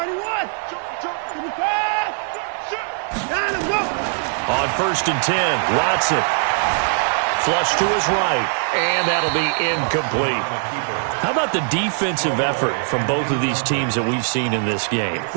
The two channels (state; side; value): silent; left; 65 dB below the other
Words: On 1st and 10, Watson. Flush to his right, and that'll be incomplete. How about the defensive effort from both of these teams that we've seen in this game?